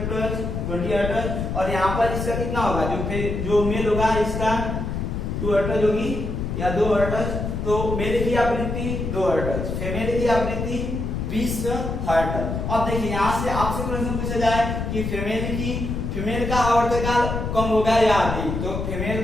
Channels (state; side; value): noise; left; rumble, 3 dB below the sound